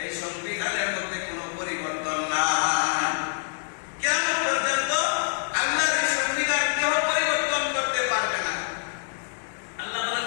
এই সংবিধানের মধ্যে কোনো পরিবর্তন নাই। কিয়ামত পর্যন্ত আল্লাহর এই সংবিধান কেউ পরিবর্তন করতে পারবে না। আল্লাহ বলেন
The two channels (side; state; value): right; silent; digital silence